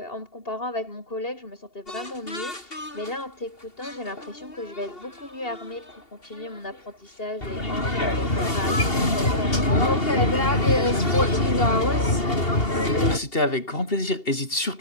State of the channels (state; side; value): late; right; 2.8 ms